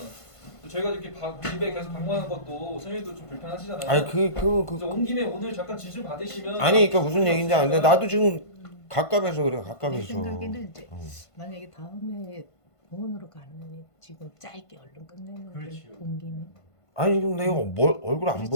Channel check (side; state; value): right; late; 1.5 ms